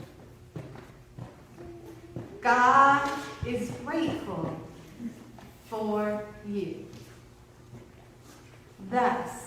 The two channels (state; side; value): identical; both; correlation 1.00